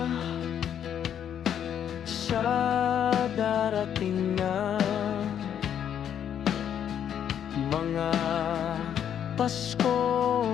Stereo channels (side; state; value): right; quieter; 9.3 dB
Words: sa darating na mga Pasko,